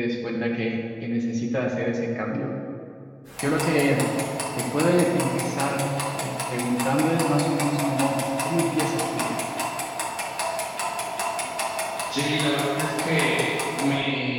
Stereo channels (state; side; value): identical; both; correlation 1.00